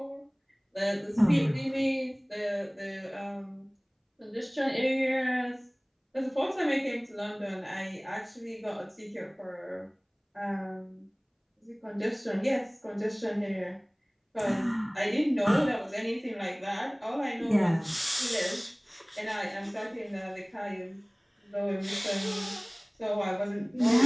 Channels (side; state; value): both; identical; correlation 1.00